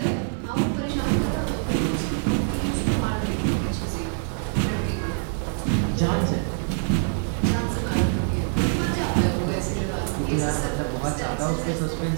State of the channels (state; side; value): silent; left; digital silence